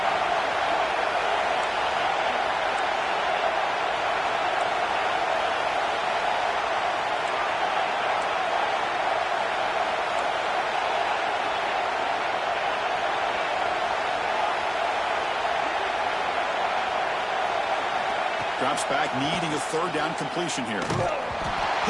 Drops back, needing a third down completion here.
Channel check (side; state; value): both; identical; correlation 1.00